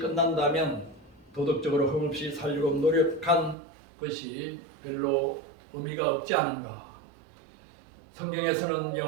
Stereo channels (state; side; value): drops out; left; at 3.6 s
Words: 도덕적으로 흠없이 살려고 노력한 것이 별로 의미가 없지 않은가? 성경에서는